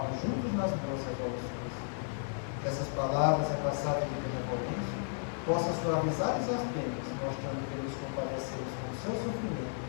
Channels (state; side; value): silent; right; digital silence